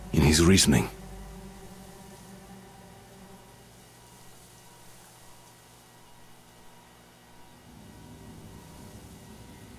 in his reasoning.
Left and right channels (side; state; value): both; identical; correlation 1.00